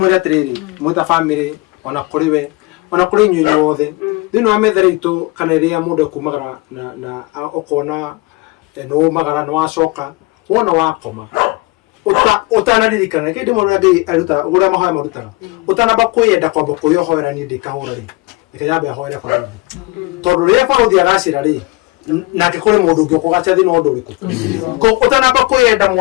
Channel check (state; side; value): quieter; right; 23.5 dB